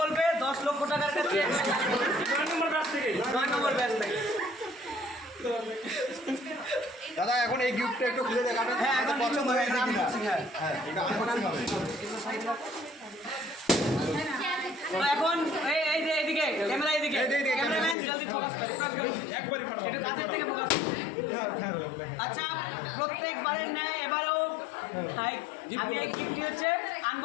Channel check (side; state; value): right; drops out; at 17.9 s